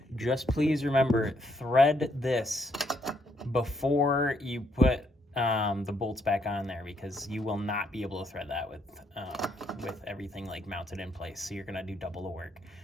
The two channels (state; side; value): normal; both; correlation 0.73